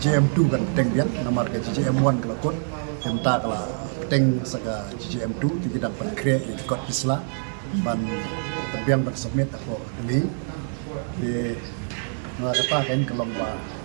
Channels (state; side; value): silent; left; 62 dB below the other